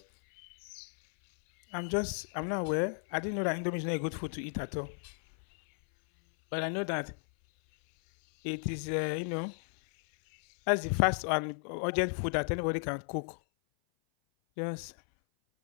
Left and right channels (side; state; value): right; silent; 55 dB below the other